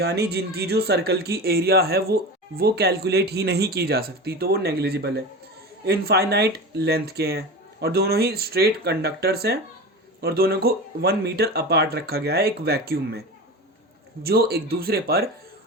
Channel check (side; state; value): both; normal; correlation 0.28